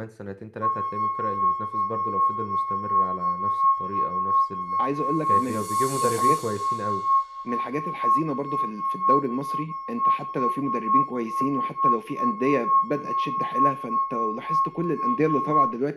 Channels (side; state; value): both; identical; correlation 1.00